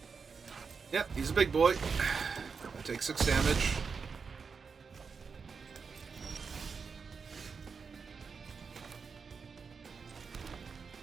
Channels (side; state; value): left; quieter; 5.4 dB